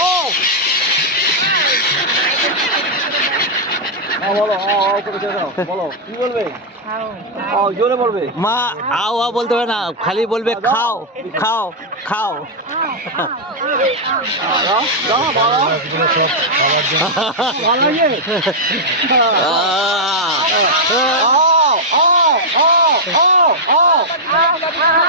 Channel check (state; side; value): normal; both; correlation -0.05